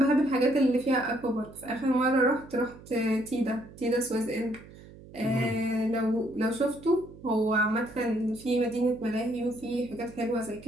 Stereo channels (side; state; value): right; noise; hum, 19 dB below the sound